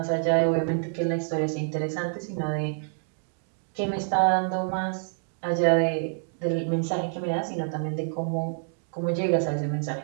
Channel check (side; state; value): left; silent; digital silence